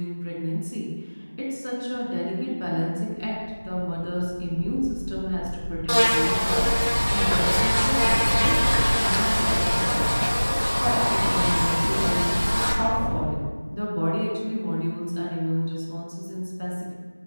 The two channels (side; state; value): both; inverted; correlation -1.00